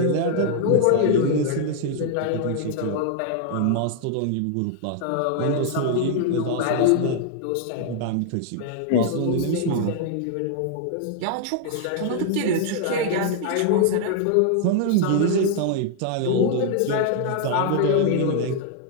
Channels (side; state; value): both; different; correlation -0.01